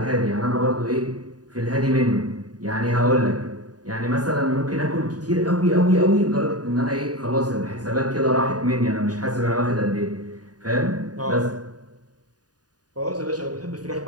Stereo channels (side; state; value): left; late; 0.68 ms